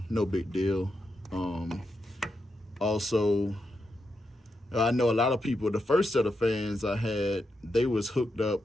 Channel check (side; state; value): both; normal; correlation 0.85